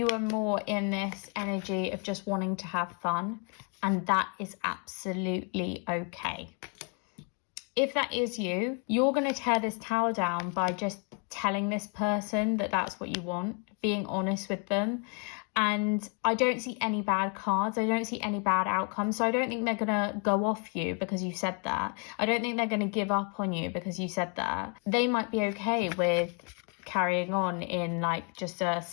are more in this energy of just wanting to have fun. And that is absolutely okay. If that is you, you're going to tear this tower down by just telling this person that that's what you want, being honest with them. And I don't see any bad cards. I don't see any bad outcomes. So I don't think they're going to go off you because you said that. I don't think they're going to give up on you because you said that. They might be okay with carrying on in like just a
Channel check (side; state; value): right; quieter; 38.0 dB